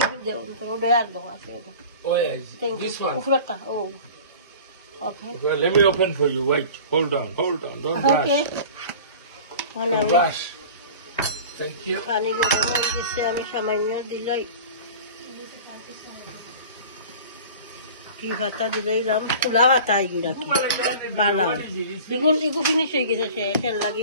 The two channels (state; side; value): inverted; both; correlation -0.40